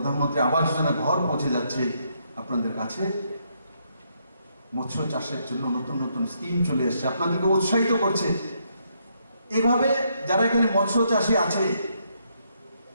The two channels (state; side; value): inverted; both; correlation -0.75